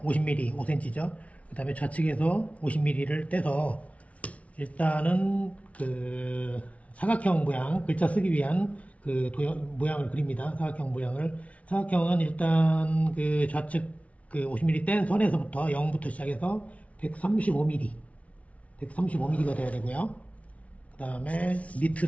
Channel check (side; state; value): right; late; 0.066 ms